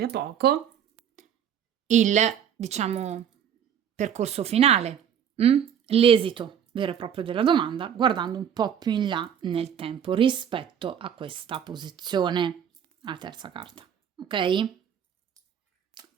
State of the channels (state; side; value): quieter; left; 8.7 dB